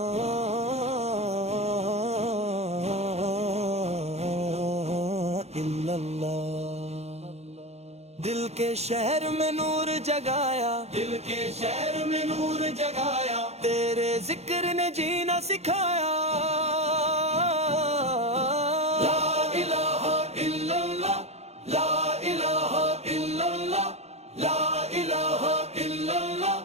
दिल के शहर में नूर जगाया, दिल के शहर में नूर जगाया, तेरे जिक्र ने जीना सिखाया। ला इलाहा इल्लल्लाह, ला इलाहा इल्लल्लाह, ला इलाहा इल्लल्लाह।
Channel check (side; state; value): left; late; 0.31 ms